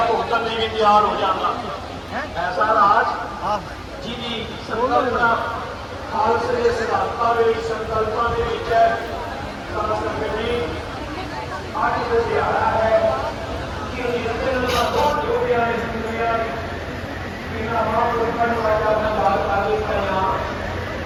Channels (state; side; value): identical; both; correlation 1.00